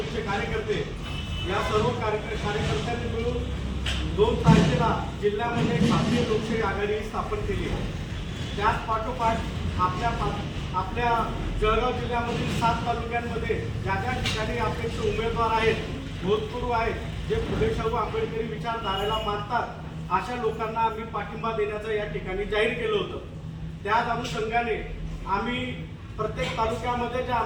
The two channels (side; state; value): both; identical; correlation 1.00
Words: कार्यकर्ते या सर्व कार्यकर्त्यांनी मिळून 2 तारखेला जिल्ह्यामध्ये भारतीय लोकशाही आघाडी स्थापन केली. त्याच पाठोपाठ आपल्या जळगाव जिल्ह्यामधील 7 तालुक्यांमध्ये ज्या ज्या ठिकाणी अपेक्ष उमेदवार आहेत, भूतपूर्व आहेत, जे फुले शाहू आंबेडकरी विचारधारेला मानतात अशा लोकांना आम्ही पाठिंबा देण्याचं या ठिकाणी जाहीर केलं होतं. त्याच अनुषंगाने आम्ही प्रत्येक तालुक्यामध्ये ज्या